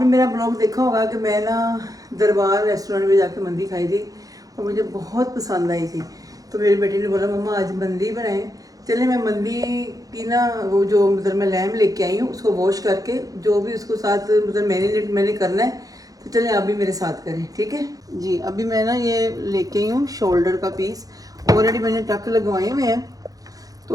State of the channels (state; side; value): late; left; 0.17 ms